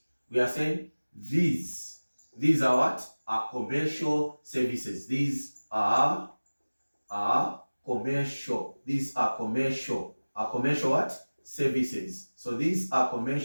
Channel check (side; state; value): both; inverted; correlation -1.00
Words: We are saying these are what? Are commercial services. These are commercial. These are commercial. Are commercial what? Services. So these are